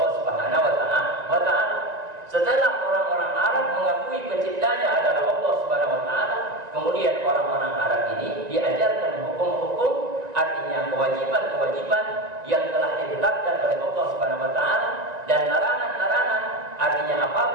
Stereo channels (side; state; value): left; late; 1.9 ms